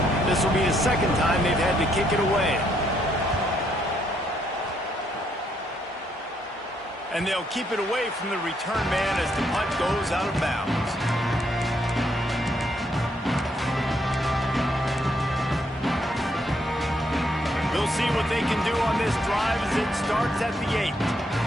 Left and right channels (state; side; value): normal; both; correlation 0.74